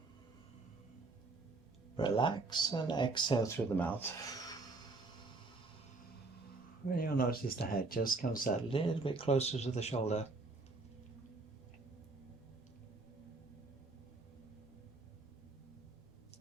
relax, and exhale through the mouth. And you'll notice the head just comes out a little bit closer to the shoulder.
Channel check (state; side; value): quieter; left; 3.6 dB